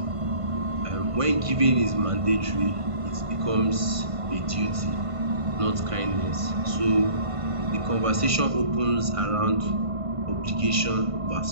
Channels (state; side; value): late; left; 1.5 ms